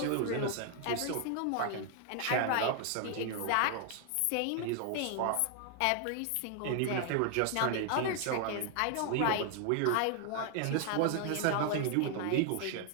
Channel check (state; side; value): different; both; correlation 0.00